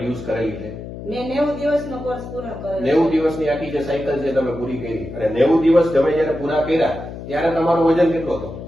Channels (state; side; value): noise; left; hum, 11 dB below the sound